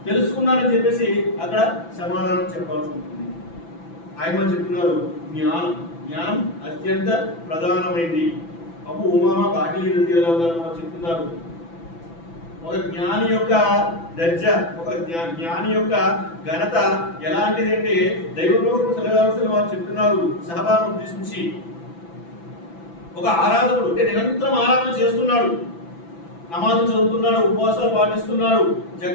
తెలుసుకున్నానని చెప్పేసి అక్కడ సమాధానం చెప్పాల్సి ఉంటుంది. ఆయన చెప్తున్నారు జ్ఞానం అత్యంత ప్రధానమైంది. అప్పుడు ఉమామా బాకీ చెప్తున్నారు, ఒక జ్ఞాని యొక్క దర్జా, ఒక జ్ఞాని యొక్క ఘనత ఎలాంటిదంటే దైవ ప్రవక్త సల్లల్లాహు అలైహి వసల్లం వారు చెప్తున్నారు సహబాను ఉద్దేశించి, ఒక ఆరాధకుడు అంటే నిరంతరం ఆరాధన చేస్తున్నాడు, నమాజు చదువుతున్నాడు, ఉపవాసాలు పాటిస్తున్నాడు,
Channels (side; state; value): right; late; 6.0 ms